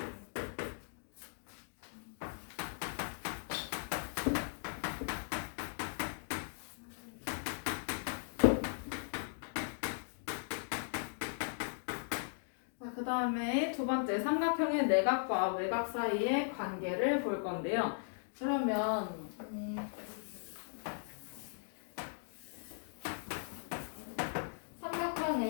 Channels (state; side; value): silent; right; digital silence